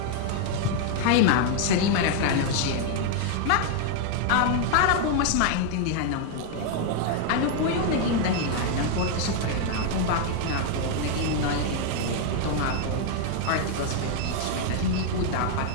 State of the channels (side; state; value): both; different; correlation 0.00